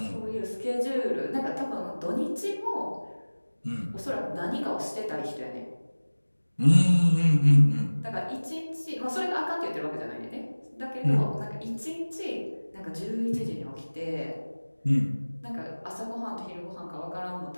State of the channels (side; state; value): both; inverted; correlation -1.00